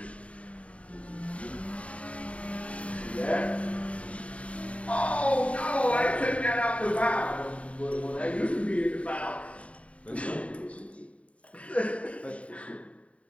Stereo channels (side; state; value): right; late; 0.064 ms